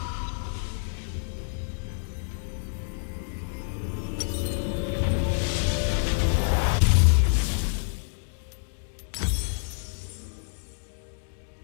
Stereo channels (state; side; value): silent; right; digital silence